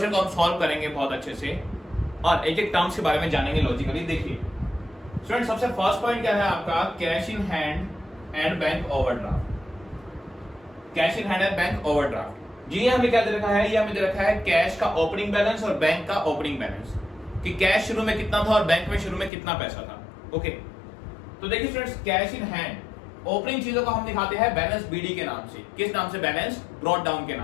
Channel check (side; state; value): right; drops out; at 19.3 s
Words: को हम सॉल्व करेंगे बहुत अच्छे से और एक एक टर्म्स के बारे में जानेंगे लॉजिकली। देखिए स्टूडेंट, सबसे फर्स्ट पॉइंट क्या है आपका, cash in hand and bank overdraft. Cash in hand and bank overdraft. जी हमें क्या दे रखा है, ये हमें दे रखा है कैश का ओपनिंग बैलेंस और बैंक का ओपनिंग बैलेंस, कि कैश शुरू में कितना था और बैंक में शुरू में कितना पैसा था। ओके, तो देखिए students, cash in hand opening चीजों को हम दिखाते हैं बैलेंस बीडी के नाम से। किस नाम से? बैलेंस ब्रॉट डाउन के